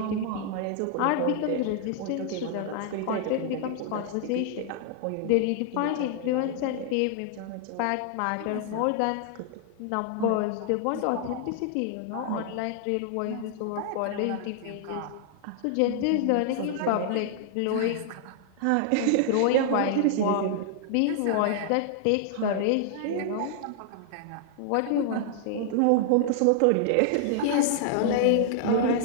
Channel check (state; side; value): different; both; correlation -0.01